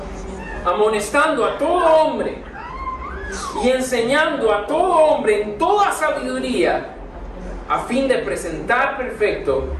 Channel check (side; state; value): both; identical; correlation 1.00